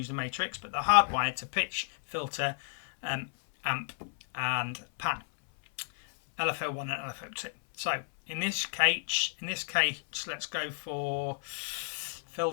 the matrix, but they're hardwired to pitch, filter, amp, and pan. LFO1 and LFO2. So in this case, let's go for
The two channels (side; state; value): right; silent; 56 dB below the other